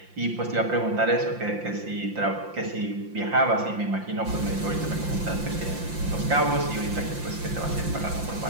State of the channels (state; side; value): late; left; 5.7 ms